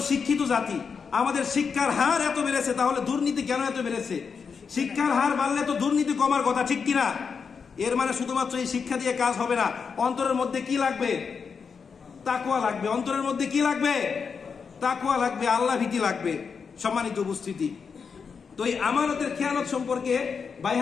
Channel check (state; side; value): quieter; right; 5.8 dB